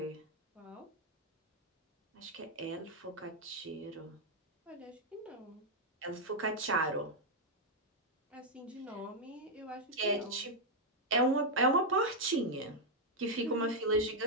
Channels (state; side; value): normal; both; correlation -0.01